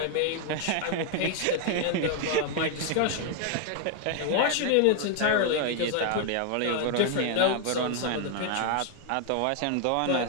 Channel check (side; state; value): both; different; correlation 0.00